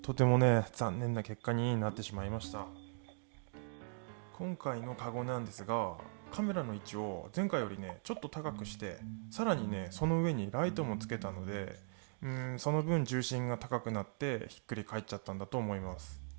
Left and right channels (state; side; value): silent; left; 52 dB below the other